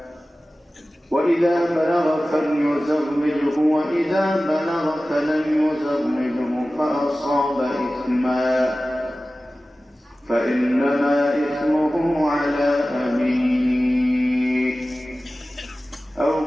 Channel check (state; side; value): normal; both; correlation 0.96